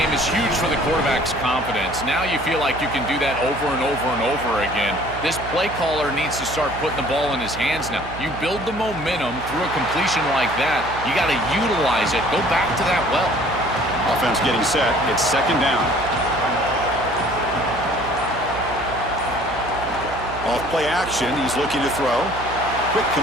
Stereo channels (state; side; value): noise; right; hum, 11 dB below the sound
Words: is huge for the quarterback's confidence. Now you feel like you can do that over and over and over again. This play caller needs to start putting the ball in his hands now. You build the momentum through a completion like that. You got to utilize it. Go back to that well. Offense getting set. It's 2nd down. Off play action, he's looking to throw. Quick